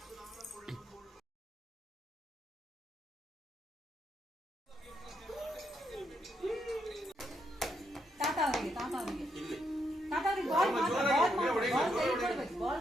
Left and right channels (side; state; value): both; normal; correlation 0.78